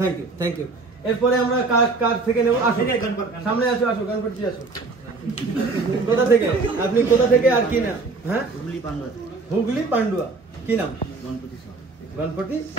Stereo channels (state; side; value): quieter; left; 3.9 dB